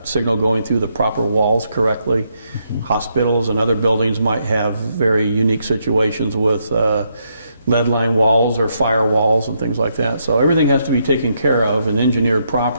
signal going through the proper walls correctly. Mm-hmm. Hospitals and other buildings might have very unique situations with lead line walls or fire walls and things like that. So everything has to be taken care of and engineered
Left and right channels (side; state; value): both; inverted; correlation -0.77